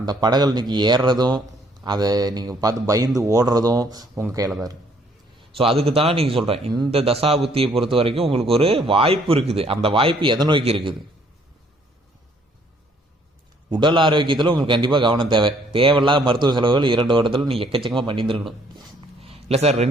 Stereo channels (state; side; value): normal; both; correlation 0.64